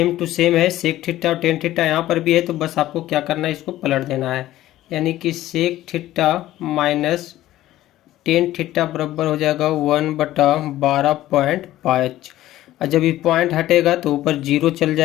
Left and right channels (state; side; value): quieter; right; 14.7 dB